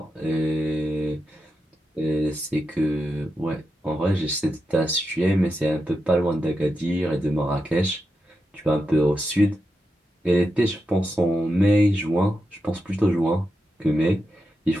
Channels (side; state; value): both; normal; correlation 0.88